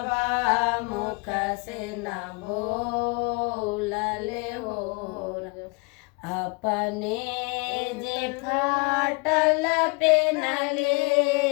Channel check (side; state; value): right; quieter; 30.0 dB